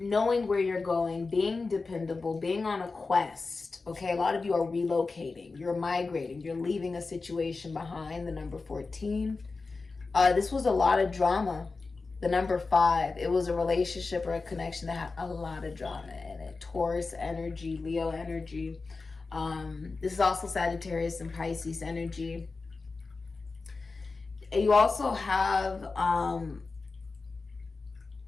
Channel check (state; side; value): quieter; right; 4.0 dB